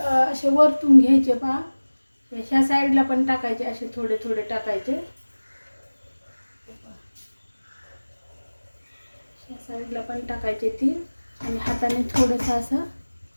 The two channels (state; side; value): inverted; both; correlation -1.00